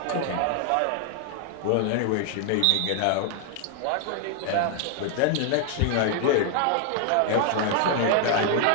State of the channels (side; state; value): both; different; correlation 0.00